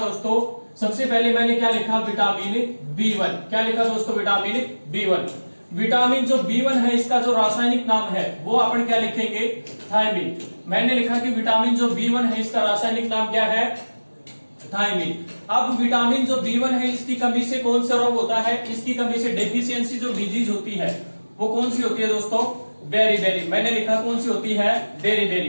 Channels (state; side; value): inverted; both; correlation -1.00